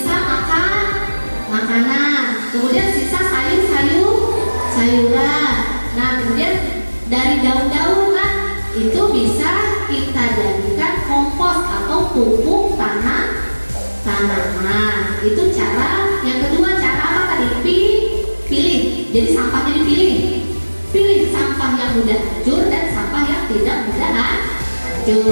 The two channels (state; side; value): inverted; both; correlation -1.00